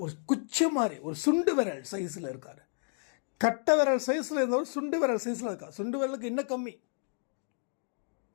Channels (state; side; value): silent; right; 57 dB below the other